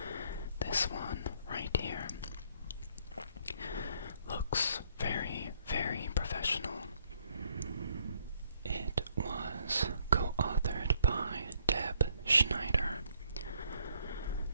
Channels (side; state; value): both; inverted; correlation -0.67